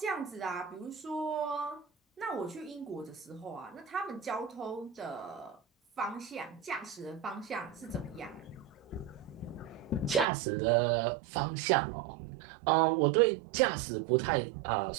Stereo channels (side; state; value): left; drops out; at 10.2 s